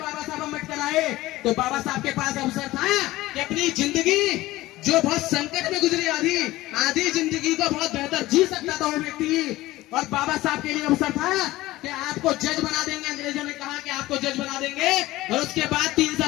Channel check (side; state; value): right; quieter; 17.6 dB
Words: साहब अम्बेडकर आए, तो बाबा साहब के पास अवसर था कि अपनी जिंदगी जो बहुत संकट में गुजरी आधी जिंदगी को बहुत बेहतर जी सकता था वो व्यक्ति। और बाबा साहब के लिए अवसर था कि आपको जज बना देंगे। अंग्रेजों ने कहा कि आपको जज बना देंगे और उसके बाद 3